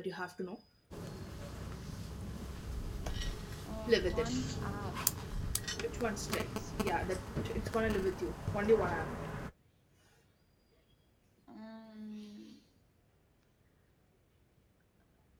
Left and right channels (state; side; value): identical; both; correlation 1.00